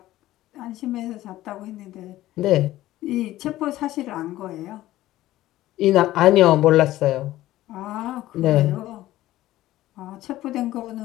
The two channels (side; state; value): right; quieter; 15.3 dB